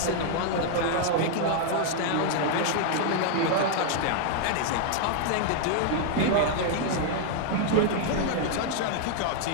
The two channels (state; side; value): different; both; correlation 0.00